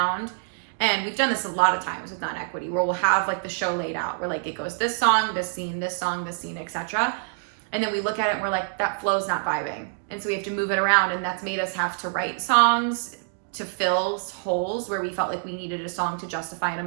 And we've done this a lot of times with non-equity, where we'll have like the show laid out, where like it goes this song, this scene, this song, this scene, etc. And then we look at it and we're like, that flow's not vibing. And so we have to move it around, and that's made us have to write songs to fill holes where we felt like we needed a song to justify an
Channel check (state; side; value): silent; left; digital silence